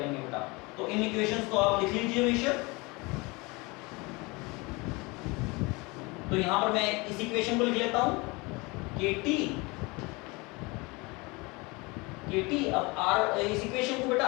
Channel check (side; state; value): right; quieter; 25.7 dB